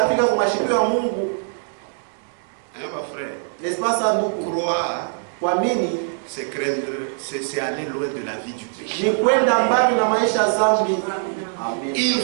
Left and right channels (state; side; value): silent; left; 64 dB below the other